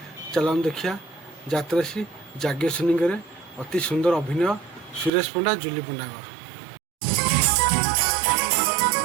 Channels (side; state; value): left; drops out; at 5.1 s